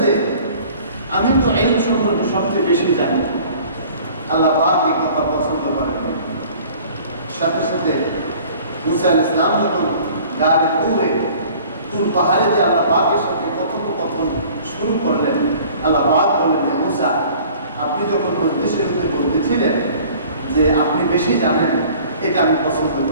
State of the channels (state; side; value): inverted; both; correlation -0.49